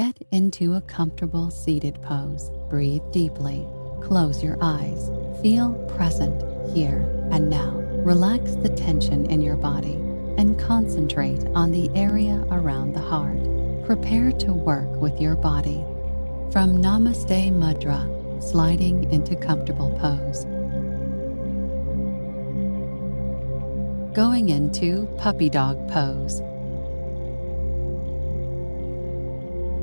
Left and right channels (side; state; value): both; inverted; correlation -1.00